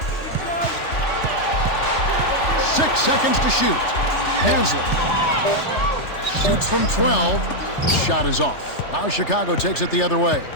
seconds to shoot. Haslam shoots from 12. Shot is off. Now Chicago takes it the other way.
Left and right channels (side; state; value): right; late; 3.3 ms